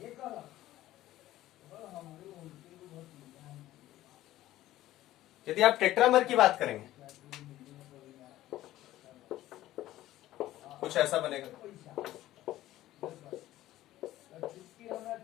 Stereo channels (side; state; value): right; quieter; 14.9 dB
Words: यदि आप टेट्रामर की बात करेंगे, कुछ ऐसा बनेगा।